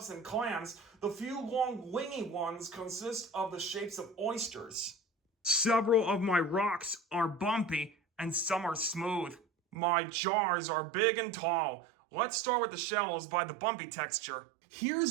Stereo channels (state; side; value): drops out; left; at 9.8 s